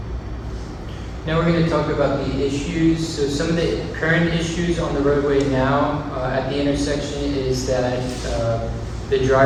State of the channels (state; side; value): identical; both; correlation 1.00